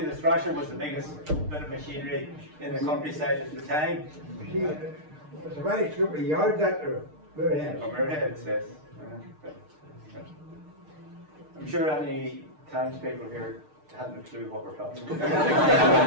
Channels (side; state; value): left; late; 6.6 ms